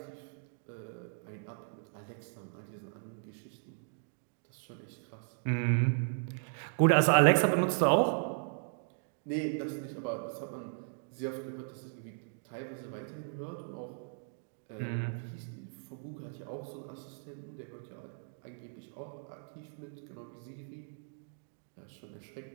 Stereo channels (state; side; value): silent; left; digital silence